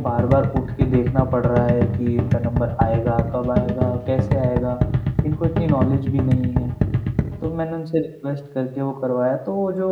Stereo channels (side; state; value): both; identical; correlation 1.00